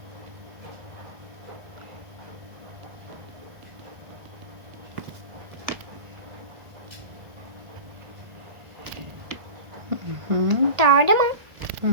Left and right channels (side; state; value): left; late; 1.6 ms